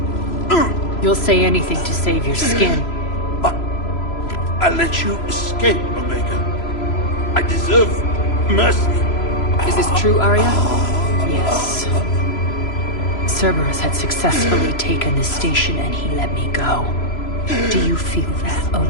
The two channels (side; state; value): right; late; 3.0 ms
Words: You'll say anything to save your skin. I let you escape, Omega. I deserve mercy. Is this true, Arya? Yes. Cerberus had successfully taken the station and he let me go. Do you feel that,